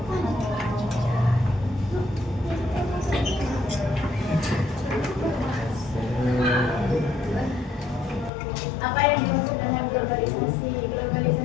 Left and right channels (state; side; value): drops out; right; at 8.3 s